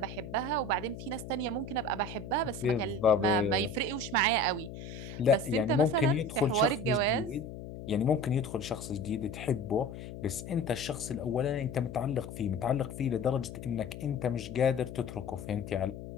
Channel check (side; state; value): left; noise; hum, 11 dB below the sound